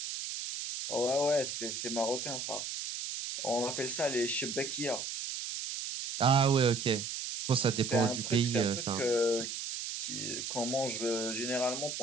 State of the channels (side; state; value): right; noise; hiss, 5 dB below the sound